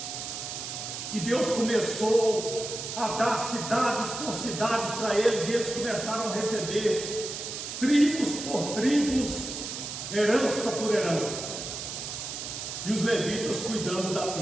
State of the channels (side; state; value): right; noise; hiss, 6 dB below the sound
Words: E Deus começou a dar cidades por cidades para eles, e eles começaram a receber tribos por tribos, herança por herança. E os levitas cuidando da